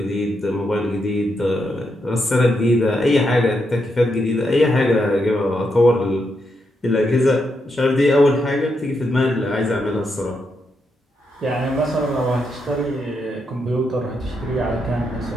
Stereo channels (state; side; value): normal; both; correlation 0.82